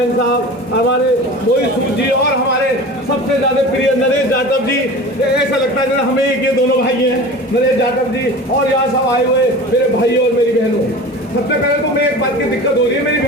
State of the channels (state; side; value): normal; both; correlation 0.35